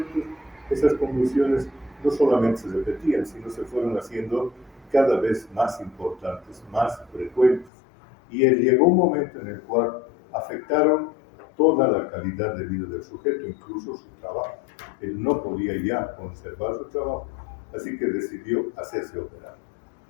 esas convulsiones no solamente se repetían, sino se fueron haciendo cada vez más importantes, más frecuentes. Y llegó un momento en el cual afectaron toda la calidad de vida del sujeto, incluso su trabajo. Él no podía ya conservar su trabajo, así que decidió hacerse operar.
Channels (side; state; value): right; drops out; at 7.7 s